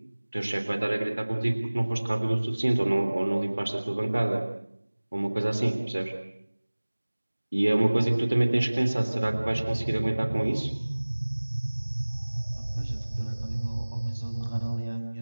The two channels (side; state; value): both; inverted; correlation -1.00